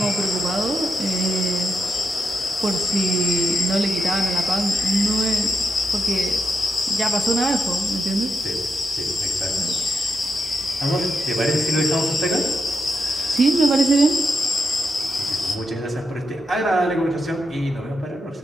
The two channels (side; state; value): both; normal; correlation 0.85